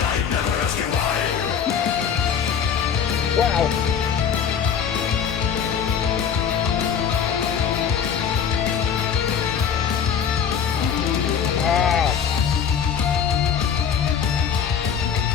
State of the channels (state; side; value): quieter; right; 7.6 dB